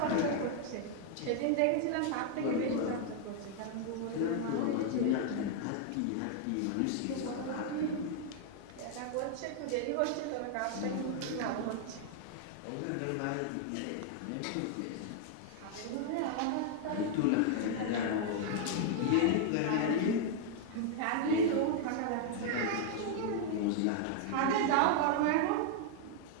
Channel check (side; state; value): both; different; correlation 0.00